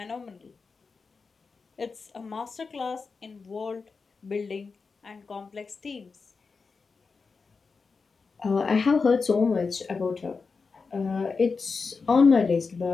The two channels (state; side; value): quieter; right; 4.7 dB